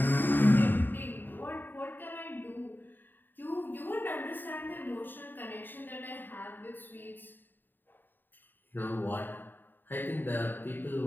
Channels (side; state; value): right; late; 0.092 ms